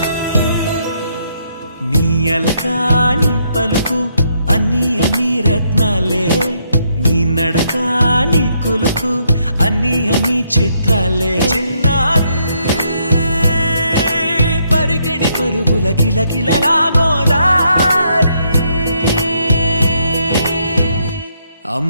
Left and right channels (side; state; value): both; inverted; correlation -0.74